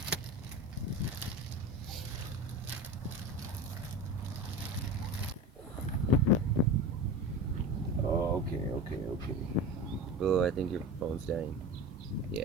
Okay. Oh, I think your phone's dying.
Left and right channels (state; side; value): normal; both; correlation 0.30